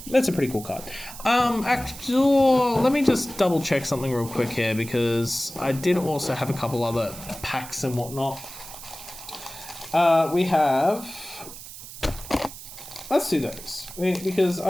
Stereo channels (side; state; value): right; noise; hiss, 14 dB below the sound